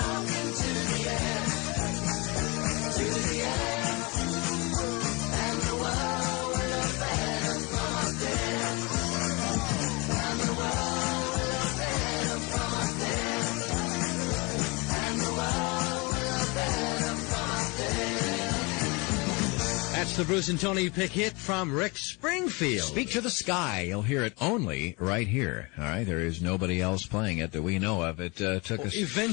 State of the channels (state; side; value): quieter; right; 27.7 dB